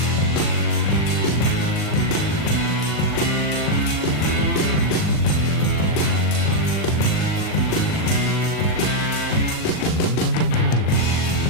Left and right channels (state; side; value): late; right; 39 ms